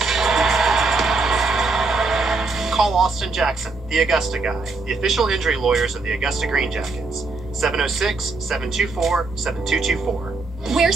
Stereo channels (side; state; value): left; quieter; 3.7 dB